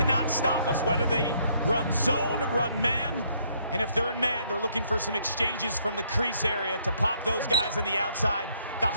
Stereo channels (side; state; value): both; inverted; correlation -0.69